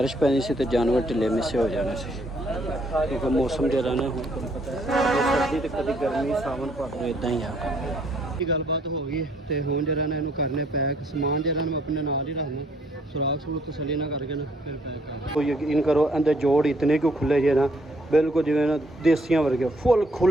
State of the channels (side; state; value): both; normal; correlation 0.66